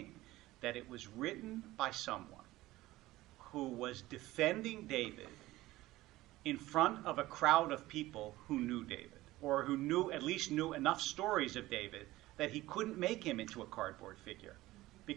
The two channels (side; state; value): left; quieter; 17.5 dB